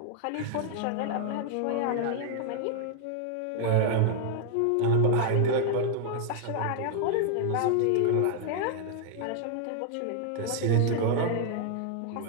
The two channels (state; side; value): different; both; correlation 0.00